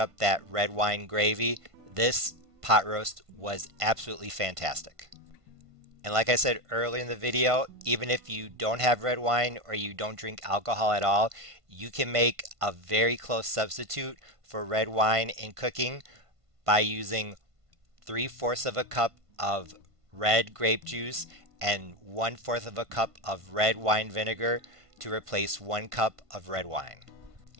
that red wine gravy. This pot roast was absolutely fantastic. And like I said earlier in the video, even if you don't have red wine or you don't drink alcohol at all, you can make a very close substitute for red wine in cooking by using 3/4 of a cup of red grape juice and 1/4 of a cup of red wine vinegar to replace 1 cup of red wine.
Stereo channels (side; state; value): left; late; 1.5 ms